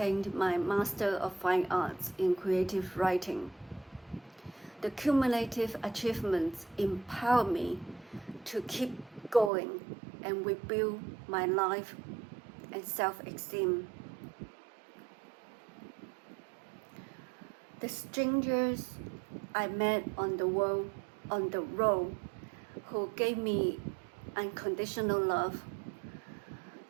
my Master of Fine Arts in Creative Writing. The cumulative achievements empower me to keep going and rebuild my life and self-esteem. The strangers I met on the road who gave me unconditional love,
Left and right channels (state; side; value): drops out; left; at 9.5 s